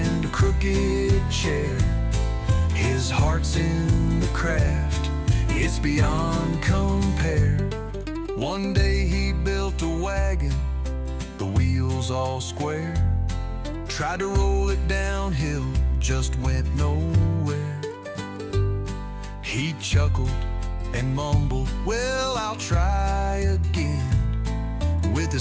a crooked chair. His heart's in the craft, it's beyond compare. One day he built a wagon, the wheels all square. Tried to roll it downhill, just went nowhere. He chuckled and mumbled, well, I'll try again, with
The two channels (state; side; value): identical; both; correlation 1.00